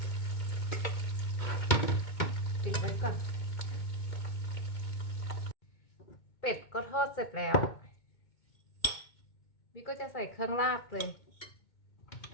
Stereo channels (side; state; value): right; late; 2.2 ms